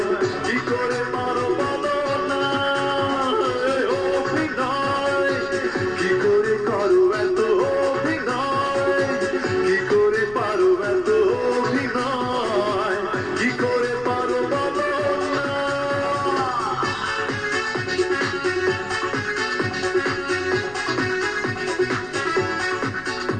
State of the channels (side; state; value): left; noise; rumble, 21 dB below the sound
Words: কি করে পারো বলো না। অভিনয় কি করে করো এত অভিনয়, কি করে পারো এত অভিনয়, কি করে পারো বলো না।